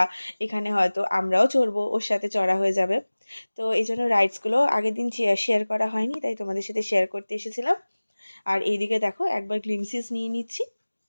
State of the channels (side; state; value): both; inverted; correlation -1.00